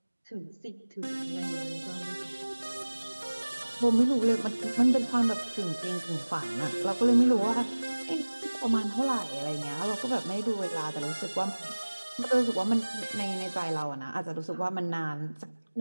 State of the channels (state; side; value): inverted; both; correlation -1.00